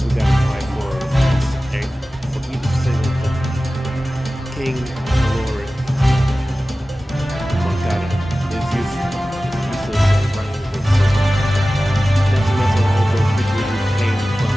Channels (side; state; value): both; normal; correlation 0.96